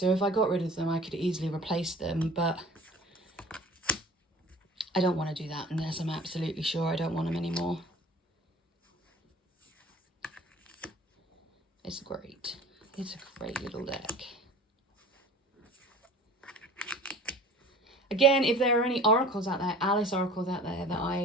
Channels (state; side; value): normal; both; correlation 0.44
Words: if I got rid of them I could easily replace them, but I don't want to do that unless I'm absolutely sure I don't want them anymore. It's great. It's a great little deck. Again, if there are any oracles out there, Alice oracles out there that